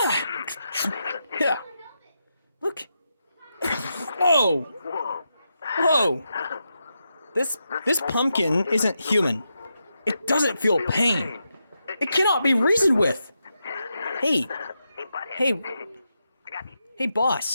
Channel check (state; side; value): inverted; both; correlation -0.86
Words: Yeah. Look. Whoa. This pumpkin isn't human. It doesn't feel pain. It cannot be reasoned with. Hey,